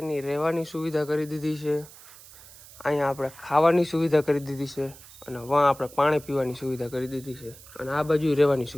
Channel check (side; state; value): right; noise; hiss, 20 dB below the sound